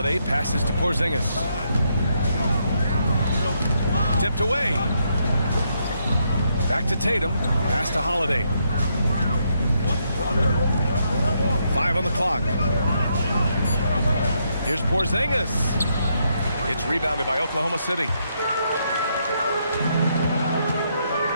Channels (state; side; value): inverted; both; correlation -0.77